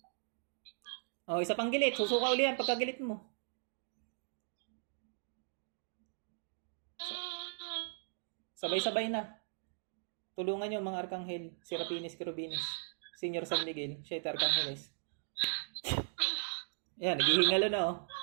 Oh, isa pang gilit. Susuka uli yan pagkagilit mo. Sabay-sabay na. Tulungan nyo mga Arkanghel. Serapinis, Querubines. Senior San Miguel. Siete Arcángeles. Yan, naghihingalo na oh.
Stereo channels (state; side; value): silent; left; digital silence